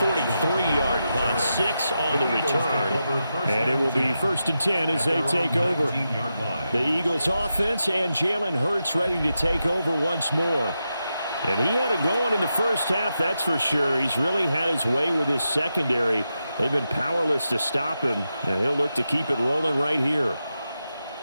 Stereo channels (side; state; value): both; inverted; correlation -0.88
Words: punt. 6 on the return. And it will be 1st and 10 as they take over. The Eagles offense and Jalen Hurts ready to take over once more. And he had it going in the first half, that's for sure. He's really had his way with his secondary. They've been powerless to stop him, and he'll look to keep it rolling right here.